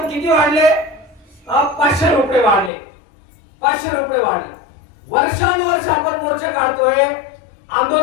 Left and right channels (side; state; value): right; drops out; at 2.7 s